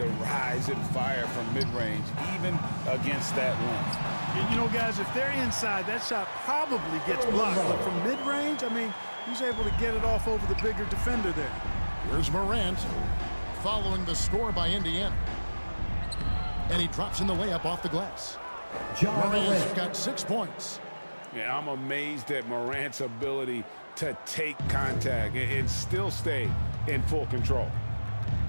rise and fire from mid-range, even against that length. You know, guys, if they're inside, that shot probably gets blocked. But from mid-range, I mean, he's able to get it off over the bigger defender there. Here's Morant following the score by Indiana. And he drops in the layup off the glass. Morant's got 6 points. Yeah, I'm amazed at Morant's ability to take contact and still stay in full control.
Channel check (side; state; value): both; inverted; correlation -1.00